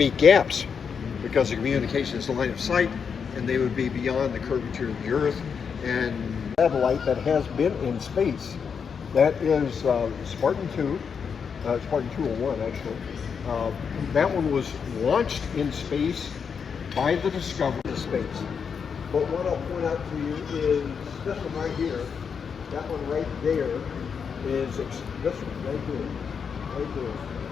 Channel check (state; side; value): quieter; right; 6.5 dB